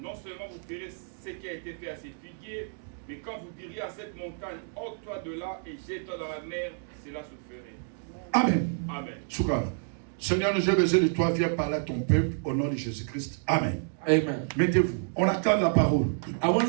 seulement vous verrez ce qui a été fait à ces figuiers, mais quand vous diriez à cette montagne, ôte-toi de là et jette-toi dans la mer, cela se ferait. Amen. Amen. Shukran. Seigneur, j'ai besoin de toi, viens parler à ton peuple au nom de Jésus-Christ. Amen. Amen. Mettez-vous. On attend la parole. I want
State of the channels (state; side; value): silent; left; 58 dB below the other